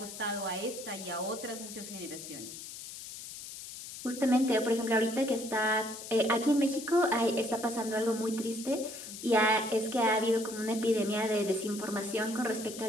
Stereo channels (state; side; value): noise; left; hiss, 11 dB below the sound